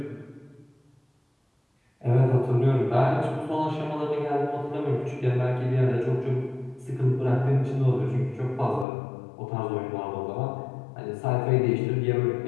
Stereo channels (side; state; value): right; drops out; at 8.8 s